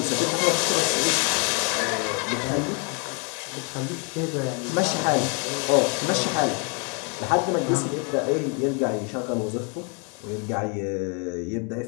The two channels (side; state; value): right; quieter; 35.5 dB